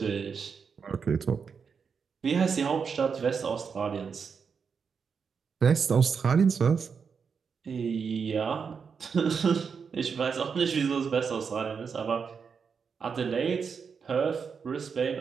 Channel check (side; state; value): left; quieter; 6.0 dB